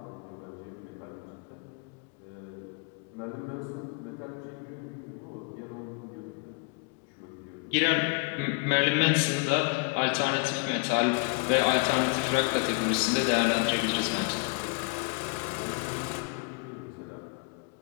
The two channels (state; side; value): quieter; right; 32.8 dB